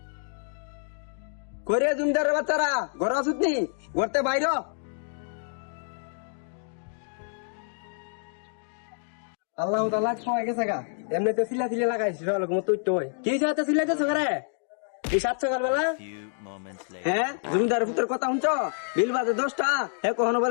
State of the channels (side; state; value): right; silent; digital silence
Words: করে জমিদারের বাচ্চারা ঘর আসুত নি ঘরতে বাইর আল্লাহ তাআলা খাওয়া গেছে গা এমনি তো সিলা সিলা লাগাইছি তুই তো কি সাথে সিলাইতেছ করে এই 7 সকালবেলা হ্যাঁ জমিদারের পুত্রের কথা শুনছ বিল বাজে 10টা হ্যাঁ কখনো